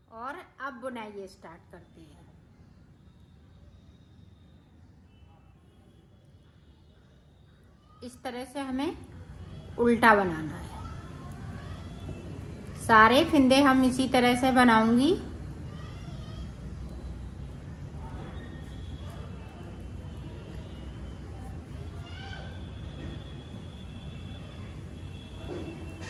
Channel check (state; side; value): identical; both; correlation 1.00